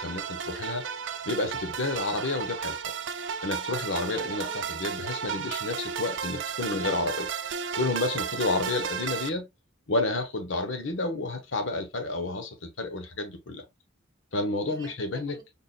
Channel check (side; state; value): both; normal; correlation -0.11